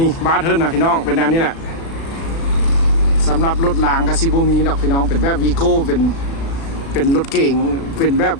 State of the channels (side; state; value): right; late; 36 ms